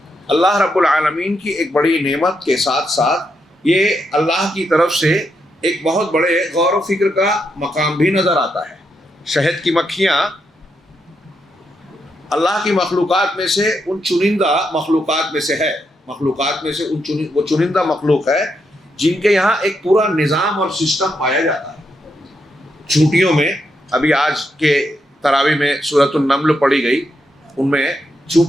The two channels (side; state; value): both; normal; correlation 0.81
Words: اللہ رب العالمین کی ایک بڑی نعمت کے ساتھ ساتھ یہ اللہ کی طرف سے ایک بہت بڑے غور و فکر کا مقام بھی نظر آتا ہے. شہد کی مکھیاں اللہ کی مخلوقات میں سے ان چنندہ مخلوقات میں سے ہے. مخلوقات میں سے وہ چنندہ مخلوق ہے جن کے یہاں ایک پورا نظام اور سسٹم پایا جاتا ہے. چونٹیوں میں ابھی آج کے تراویح میں سورۃ النمل پڑھی گئی، ان میں